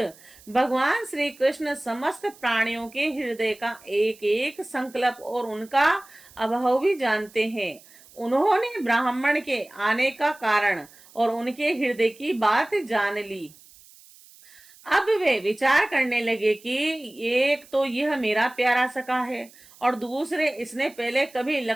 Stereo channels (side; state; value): right; noise; hiss, 24 dB below the sound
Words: भगवान श्री कृष्ण समस्त प्राणियों के हृदय का एक एक संकल्प और उनका अभाव भी जानते हैं। उन्होंने ब्राह्मण के आने का कारण और उनके हृदय की बात जान ली। अब वे विचार करने लगे कि एक तो यह मेरा प्यारा सखा है और दूसरे इसने पहले कभी